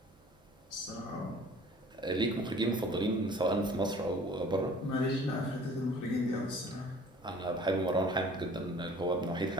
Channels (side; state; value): both; normal; correlation 0.50